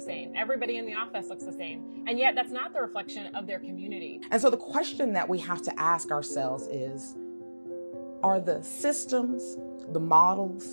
Everybody in the office looks the same. And yet that's not the reflection of their community. And so the question that we have to ask ourselves is, are the systems, the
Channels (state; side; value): inverted; both; correlation -1.00